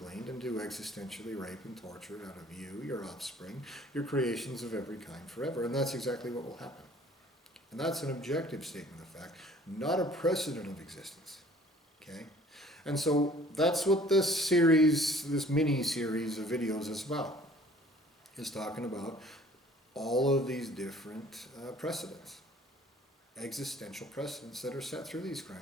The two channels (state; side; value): normal; both; correlation 0.53